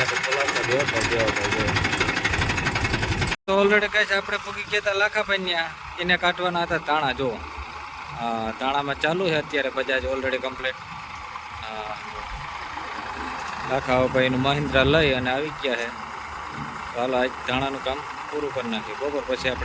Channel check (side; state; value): both; identical; correlation 1.00